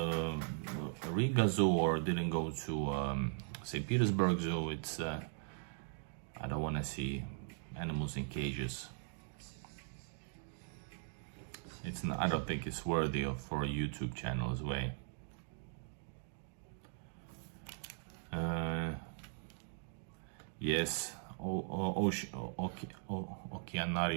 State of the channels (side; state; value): left; silent; digital silence